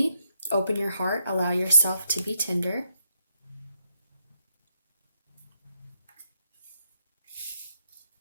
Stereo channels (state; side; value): inverted; both; correlation -0.77